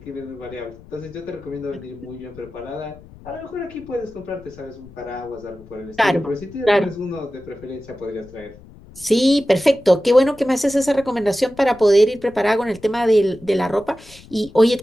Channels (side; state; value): left; noise; rumble, 21 dB below the sound